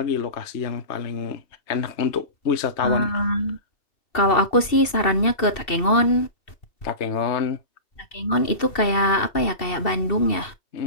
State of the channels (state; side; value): late; right; 2.7 ms